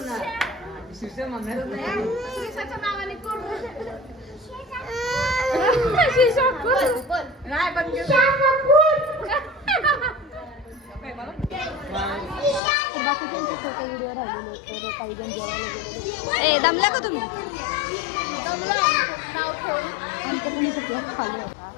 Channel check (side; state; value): right; drops out; at 12.6 s